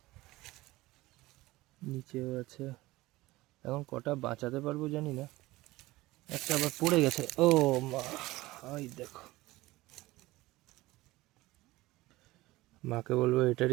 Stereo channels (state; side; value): quieter; left; 19.0 dB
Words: নিচেও আছে। এখন কটা বাঁচাতে পারবো জানি না, একটা আবার পড়ে গেছে। ও মা, ওই দেখো, মাকে বলবো